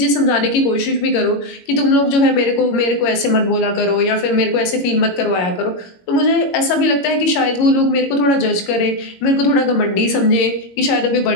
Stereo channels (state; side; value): late; right; 21 ms